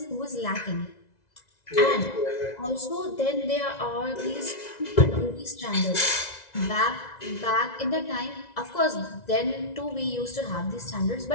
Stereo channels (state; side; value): late; right; 2.0 ms